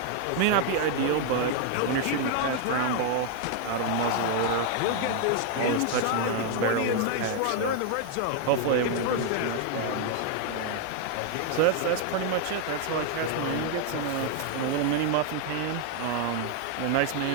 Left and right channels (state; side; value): different; both; correlation 0.00